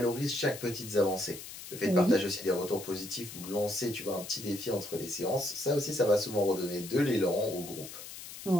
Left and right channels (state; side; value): noise; left; hiss, 12 dB below the sound